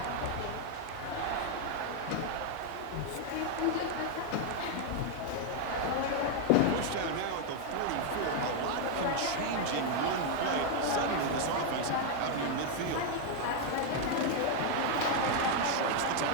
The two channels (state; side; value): different; both; correlation 0.00